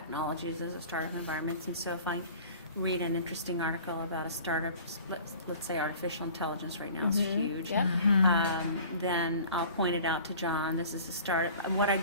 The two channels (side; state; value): both; inverted; correlation -0.45